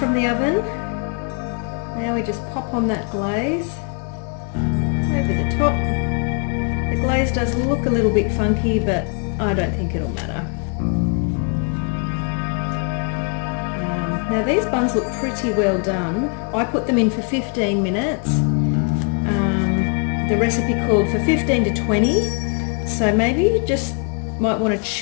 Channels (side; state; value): right; quieter; 37.9 dB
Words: the oven. Now we just pop on that glaze over the top. The glaze does look a little bit funky, but I don't think it'll matter. Now these buns look pretty well done. I put them in for 15 minutes. The recipe called for 15 to 20. So maybe you just might want to